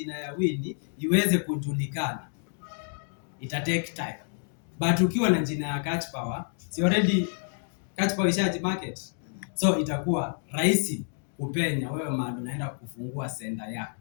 ya Winnie iweze kujulikana, ita take time. But ukiwa na jina ya Catch Power, si already Catch Power ishaji market. So itakuwa rahisi kupenya wewe mahali unaenda kufungua center yako.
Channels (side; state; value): right; silent; 59 dB below the other